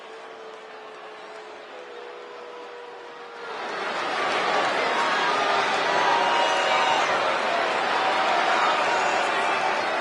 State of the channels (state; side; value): identical; both; correlation 1.00